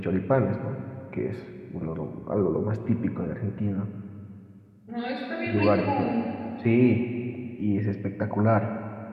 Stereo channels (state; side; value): identical; both; correlation 1.00